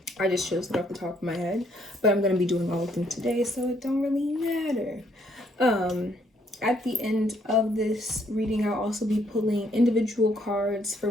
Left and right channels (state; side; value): normal; both; correlation 0.69